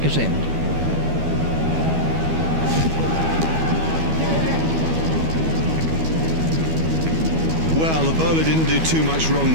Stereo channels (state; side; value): late; left; 12 ms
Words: end. Well, the bowler didn't do too much